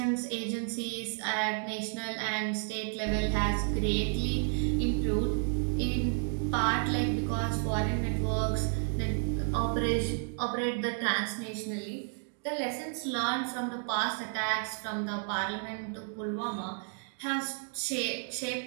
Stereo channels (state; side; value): silent; left; 56 dB below the other